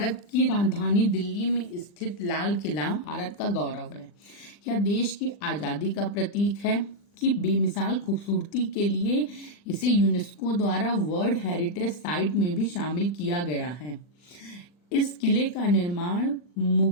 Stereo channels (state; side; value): late; right; 40 ms